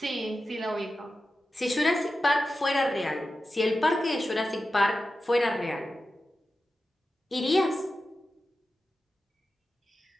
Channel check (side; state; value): both; normal; correlation 0.92